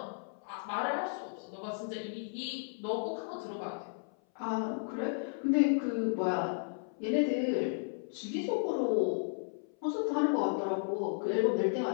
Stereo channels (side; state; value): right; silent; 55 dB below the other